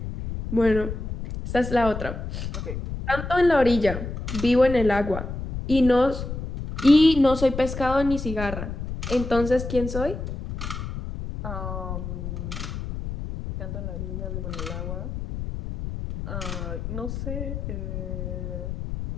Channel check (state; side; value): noise; left; rumble, 6 dB below the sound